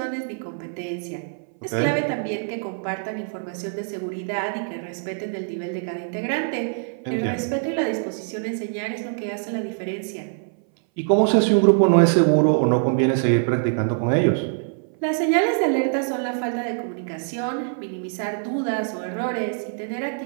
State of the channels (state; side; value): silent; left; 60 dB below the other